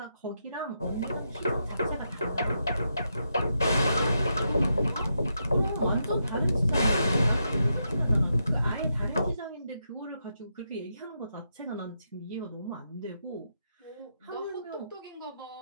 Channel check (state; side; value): inverted; both; correlation -0.83